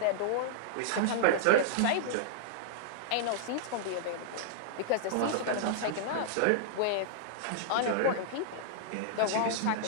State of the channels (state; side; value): different; both; correlation -0.02